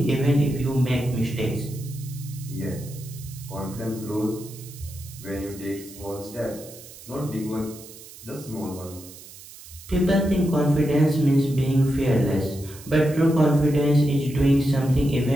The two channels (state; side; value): noise; right; hiss, 18 dB below the sound